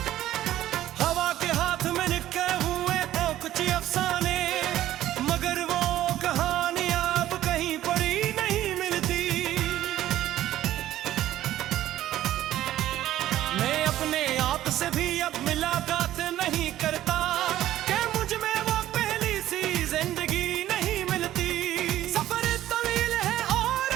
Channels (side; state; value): left; quieter; 13.5 dB